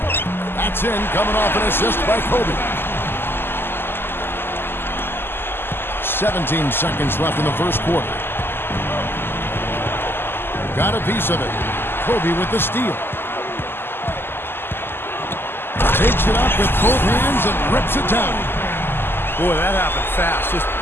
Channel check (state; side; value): late; right; 0.11 ms